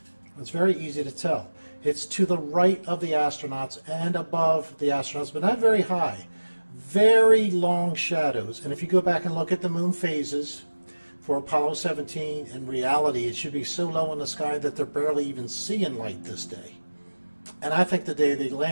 It's very easy to tell. It's to the right of the astronauts and above the astronauts, but not very high. Very long shadows. And if you go back and look at the moon phases for Apollo 17, in reality it should be so low in the sky that they're barely even seeing light this day. And I think the day they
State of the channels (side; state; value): both; inverted; correlation -1.00